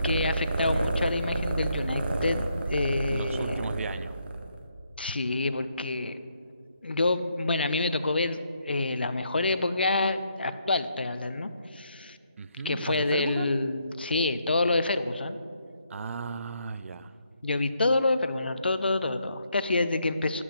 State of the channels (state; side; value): inverted; both; correlation -0.75